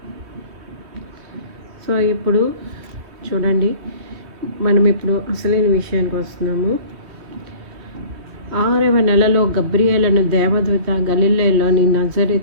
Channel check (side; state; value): left; late; 3.2 ms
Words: సో ఇప్పుడు చూడండి, మనం ఇప్పుడు అసలైన విషయానికి వస్తున్నాము. 6వ నెలలో గబ్రియేలును దేవదూత గలిలయలోని